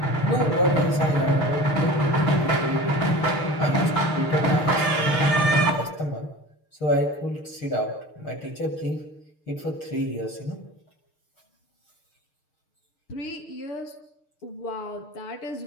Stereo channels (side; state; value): right; late; 6.7 ms